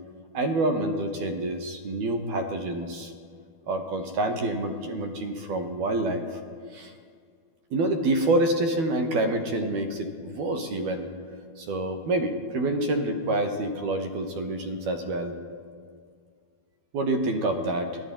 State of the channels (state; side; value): late; left; 12 ms